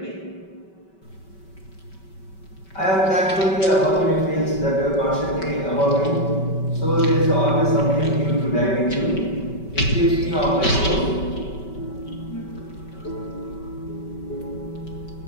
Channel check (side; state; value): right; late; 5.2 ms